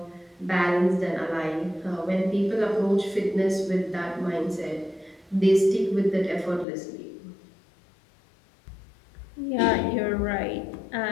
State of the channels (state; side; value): drops out; right; at 6.7 s